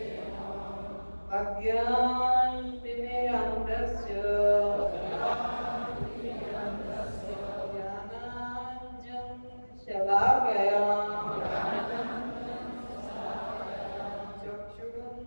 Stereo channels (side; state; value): both; inverted; correlation -1.00